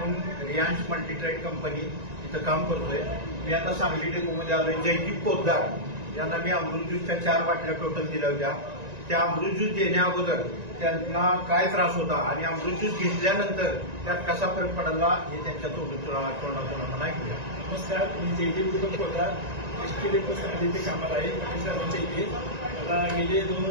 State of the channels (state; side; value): late; left; 1.9 ms